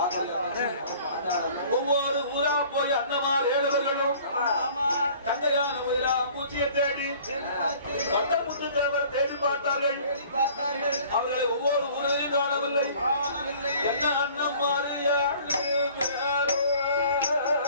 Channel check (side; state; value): both; inverted; correlation -0.51